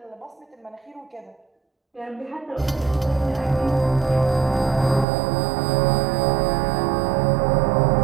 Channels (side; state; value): left; drops out; at 5.1 s